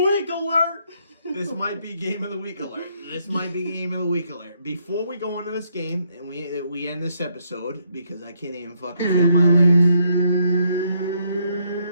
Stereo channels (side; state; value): both; inverted; correlation -0.74